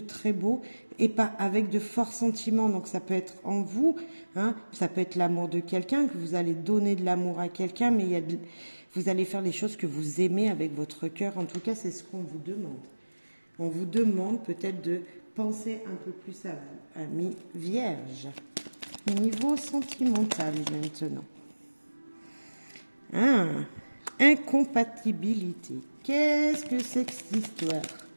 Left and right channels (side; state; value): both; inverted; correlation -1.00